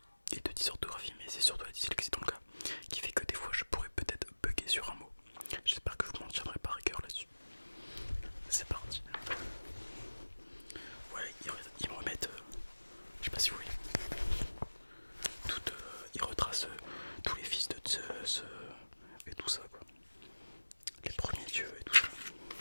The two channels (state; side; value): inverted; both; correlation -1.00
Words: et de dysorthographie, mais c'est surtout la dyslexie dans le cas qui fait que des fois je pourrais peut-être bugger sur un mot. J'espère que vous m'en tiendrez pas rigueur là-dessus. C'est parti. Ouais, ils me remettent, je sais pas si vous voyez, ils retracent tous les fils de Zeus et tout ça quoi. Les premiers dieux et tout ça.